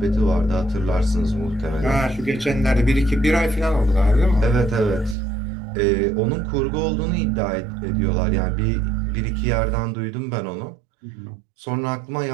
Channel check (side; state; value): left; drops out; at 5.2 s